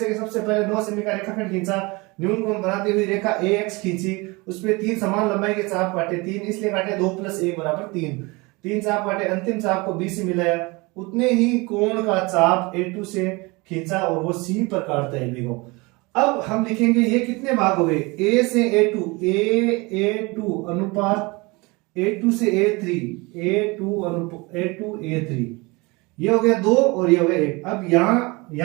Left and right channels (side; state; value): left; quieter; 25.4 dB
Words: सबसे पहले 9 सेमी का रेखाखंड खींचा, न्यून कोण बनाती हुई रेखा AX खींची, उसमें 3 समान लंबाई के चाप काटे, 3 इसलिए काटे 2 + 1 = 3, 3 चाप काटे, अंतिम चाप को B से मिलाया, उतने ही कोण का चाप A2 से खींचा और वो C पर काटता है B को। अब हम लिखेंगे ये कितने भाग हो गए, A से A2, A2 अनुपात A2 से A3, A2 A3, ये हो गया 2 और ये हो गया 1। अब